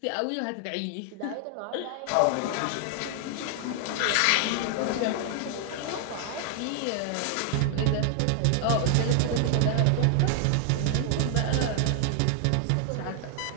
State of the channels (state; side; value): different; both; correlation 0.00